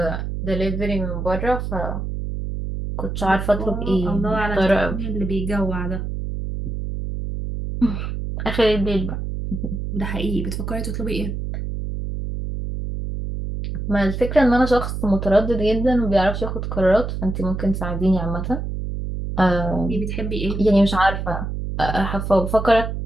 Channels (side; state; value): right; noise; hum, 4 dB below the sound